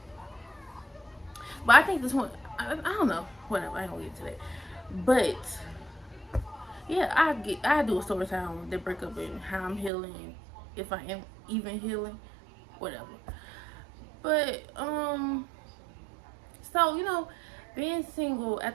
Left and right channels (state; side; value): drops out; left; at 9.9 s